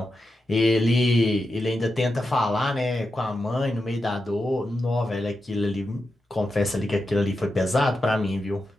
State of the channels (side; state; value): both; normal; correlation 0.89